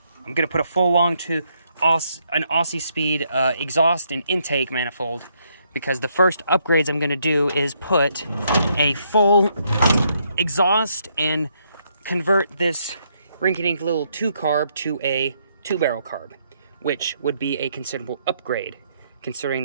going to put a full long tube, an Aussie Speed exhaust and intake manifold, because the first upgrades I'm going to do is put a full exhaust and convert this rinky-dink little 2-carb to a 2-barrel carb, which would be a considerable upgrade, considering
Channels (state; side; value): inverted; both; correlation -0.74